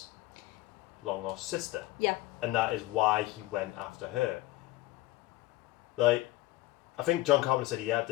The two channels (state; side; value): quieter; right; 17.8 dB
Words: long lost sister. Yeah. And that is why he went after her. Like, I think John Carpenter said he had